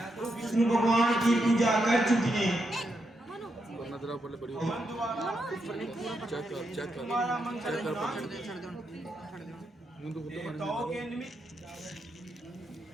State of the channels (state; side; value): normal; both; correlation 0.83